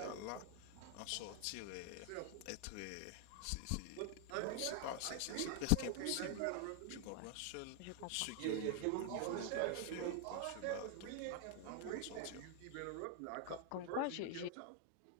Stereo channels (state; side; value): different; both; correlation 0.00